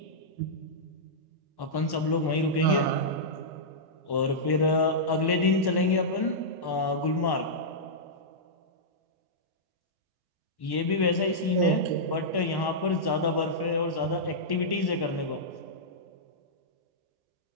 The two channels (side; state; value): right; late; 1.1 ms